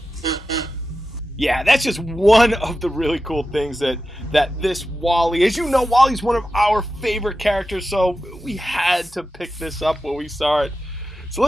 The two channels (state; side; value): normal; both; correlation 0.92